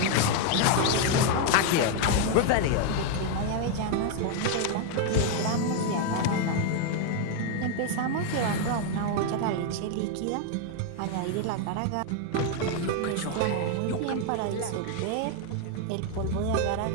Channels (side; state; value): both; different; correlation 0.00